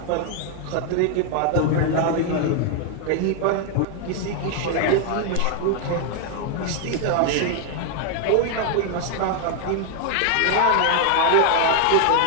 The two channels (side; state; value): both; different; correlation 0.00